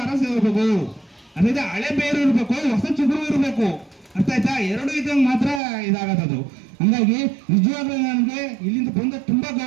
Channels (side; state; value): left; drops out; at 5.6 s